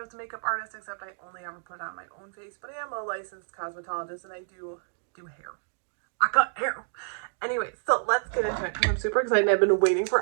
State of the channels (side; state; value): left; silent; digital silence